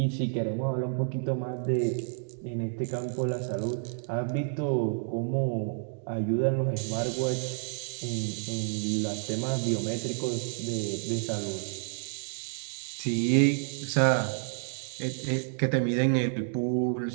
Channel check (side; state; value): left; silent; digital silence